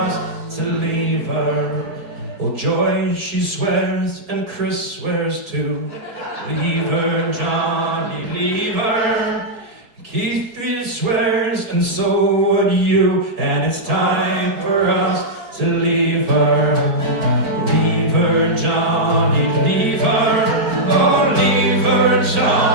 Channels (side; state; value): left; late; 4.8 ms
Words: to leave her. Oh, Joy, she swears, and Chris swears too. Leave her, Johnny, leave her. Keith swears, and so would you, and it's time for us to leave her. Leave her, Johnny, leave her. Oh, leave her,